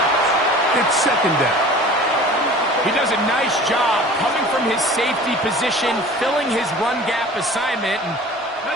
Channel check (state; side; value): normal; both; correlation 0.43